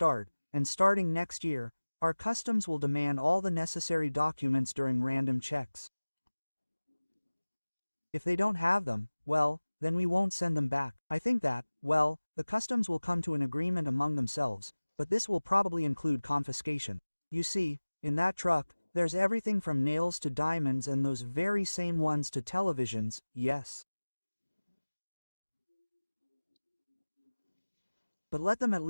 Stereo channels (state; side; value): inverted; both; correlation -1.00